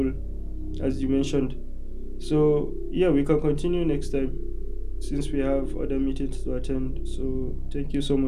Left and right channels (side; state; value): both; identical; correlation 1.00